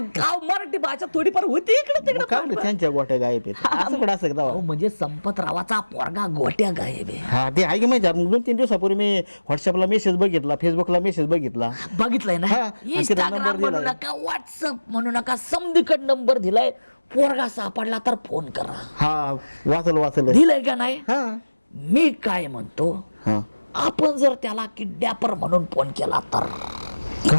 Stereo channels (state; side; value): inverted; both; correlation -1.00